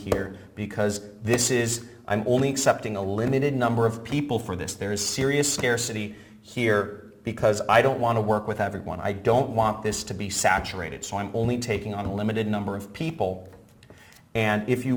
because I'm only accepting a limited number of people for this. There is serious scarcity here because I don't want to work with everyone. I don't want this to be saturated. So I'm only taking on a limited number of people. And if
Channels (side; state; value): both; identical; correlation 1.00